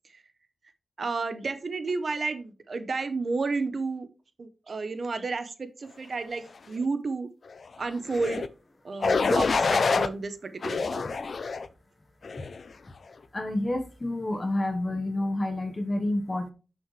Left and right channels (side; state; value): both; normal; correlation 0.91